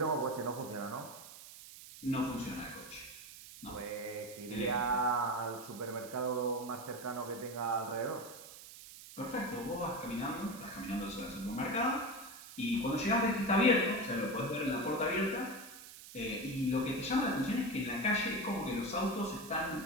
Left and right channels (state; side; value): noise; right; hiss, 15 dB below the sound